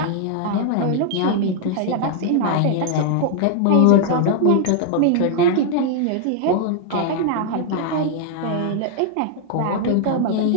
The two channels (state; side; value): different; both; correlation 0.00